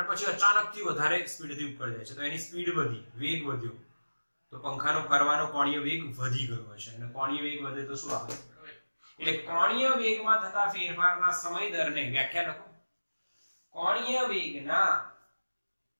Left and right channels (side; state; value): both; inverted; correlation -1.00